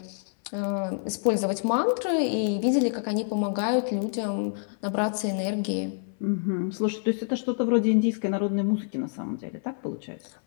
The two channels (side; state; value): right; silent; 60 dB below the other